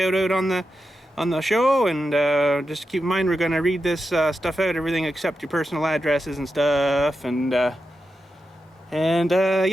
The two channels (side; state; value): both; normal; correlation 0.88